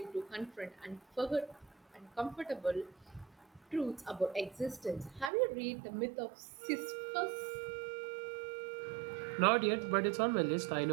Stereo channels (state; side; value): drops out; left; at 5.3 s